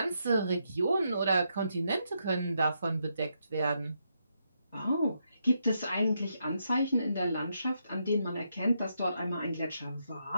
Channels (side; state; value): both; inverted; correlation -0.80